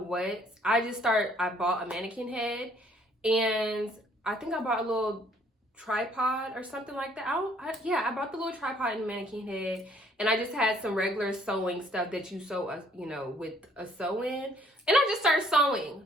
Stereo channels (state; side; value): normal; both; correlation 0.63